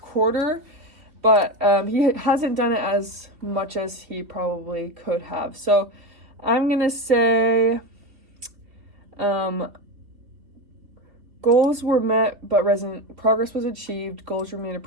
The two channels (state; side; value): late; left; 3.3 ms